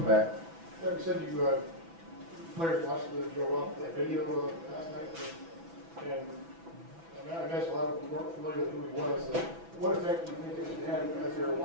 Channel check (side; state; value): left; late; 6.0 ms